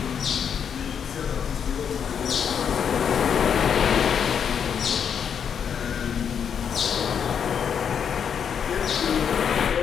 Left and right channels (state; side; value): quieter; right; 7.6 dB